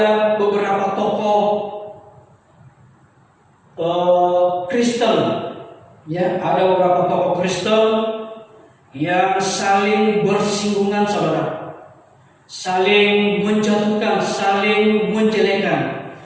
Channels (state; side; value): identical; both; correlation 1.00